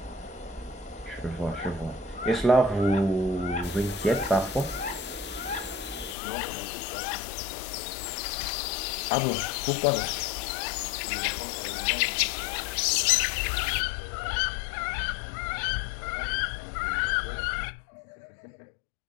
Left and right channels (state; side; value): drops out; right; at 6.2 s